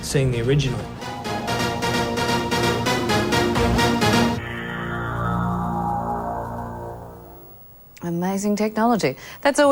seeing the original. Amazing technology. That's all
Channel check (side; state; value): both; identical; correlation 1.00